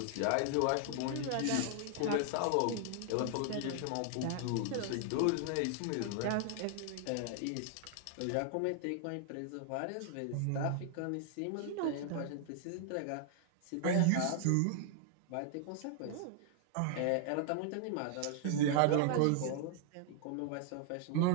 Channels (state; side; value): different; both; correlation 0.00